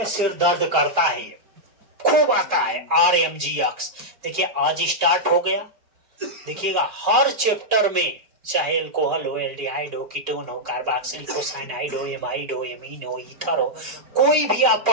सिर दर्द करता है, खूब आता है RMGX। देखिए आज स्टार्ट हो गया, देखिएगा हर चैप्टर में, चाहे अल्कोहल हो, एल्डिहाइड हो, कीटोन हो, कार्बोक्सिलिक हो, साइनाइड हो, एमाइड हो, एमीन हो, ईथर हो, कोई भी आप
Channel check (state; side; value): late; left; 4.7 ms